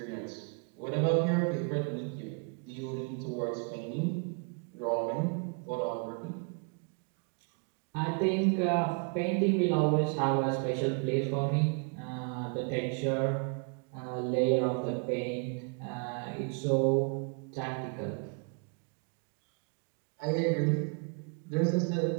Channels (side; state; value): left; quieter; 36.8 dB